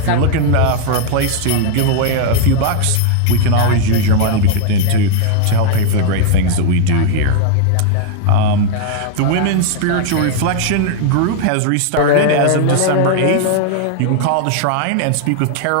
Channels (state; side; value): different; both; correlation 0.00